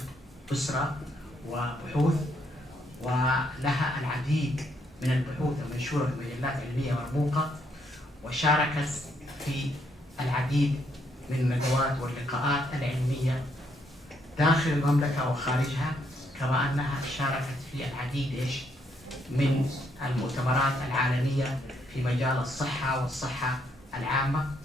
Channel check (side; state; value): both; normal; correlation 0.73